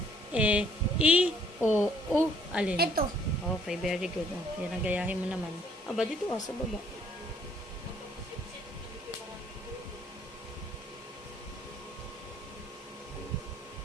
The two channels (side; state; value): both; normal; correlation 0.62